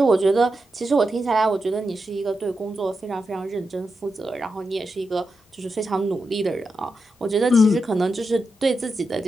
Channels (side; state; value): both; normal; correlation 0.88